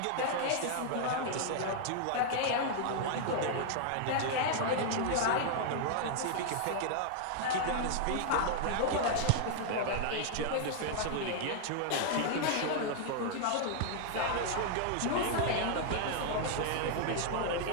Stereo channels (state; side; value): different; both; correlation -0.01